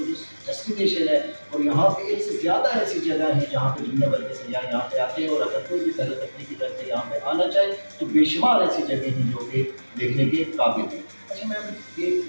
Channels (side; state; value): both; inverted; correlation -1.00